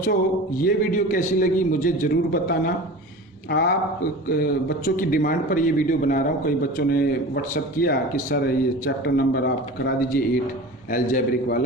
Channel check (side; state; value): both; normal; correlation 0.35